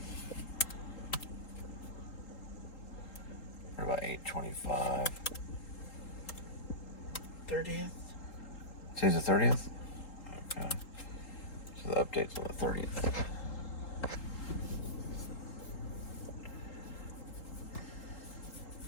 We're about 8:25. 30th? Today's the 30th? Okay. So the update's on the 30th.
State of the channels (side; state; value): right; late; 3.8 ms